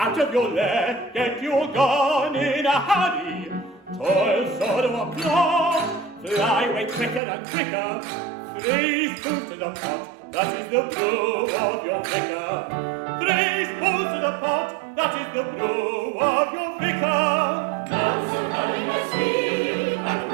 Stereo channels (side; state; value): left; drops out; at 7.2 s